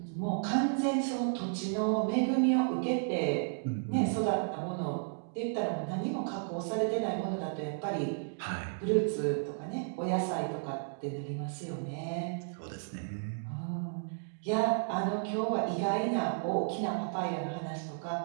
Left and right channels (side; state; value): left; silent; digital silence